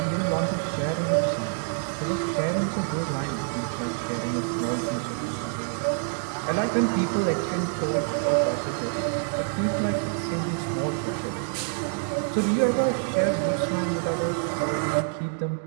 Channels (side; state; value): left; silent; 56 dB below the other